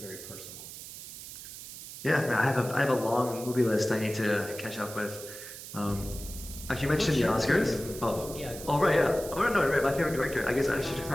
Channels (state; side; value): noise; right; hiss, 12 dB below the sound